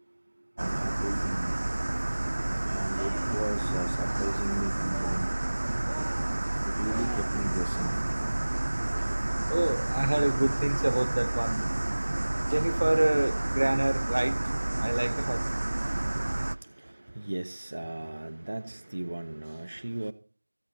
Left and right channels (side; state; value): both; inverted; correlation -1.00